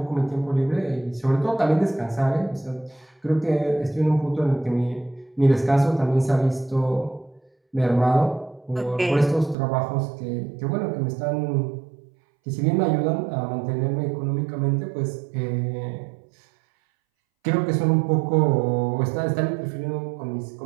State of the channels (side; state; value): left; drops out; at 9.6 s